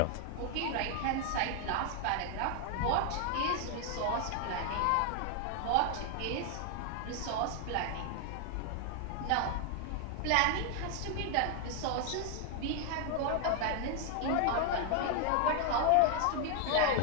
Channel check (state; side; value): different; both; correlation 0.00